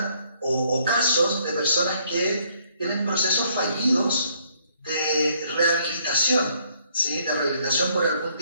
o casos de personas que tienen procesos fallidos de rehabilitación, ¿sí? De rehabilitación por algún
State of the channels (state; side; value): inverted; both; correlation -0.67